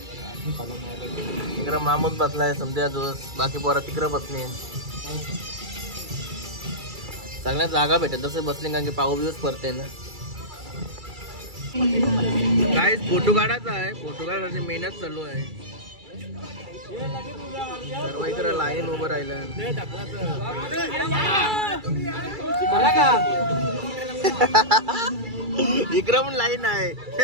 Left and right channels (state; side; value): late; left; 2.3 ms